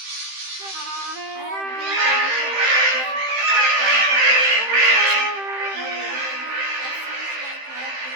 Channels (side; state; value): left; late; 15 ms